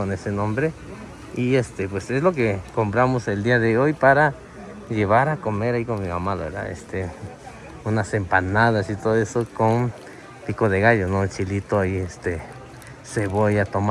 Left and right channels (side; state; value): both; identical; correlation 1.00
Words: ese nombre. Y pues es lo que compramos el día de hoy para llevar a comer ahí con mi mamá, ¿verdad? Unas empanadas y todo eso con pico de gallo, ¿no? El chilito ahí, cebolla,